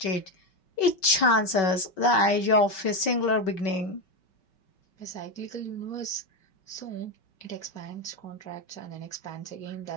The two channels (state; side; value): late; right; 5.3 ms